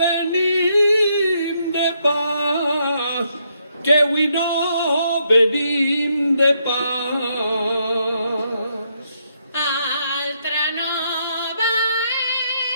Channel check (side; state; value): both; inverted; correlation -0.76